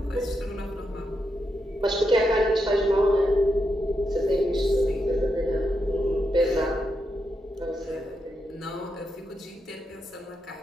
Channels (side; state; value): both; normal; correlation 0.84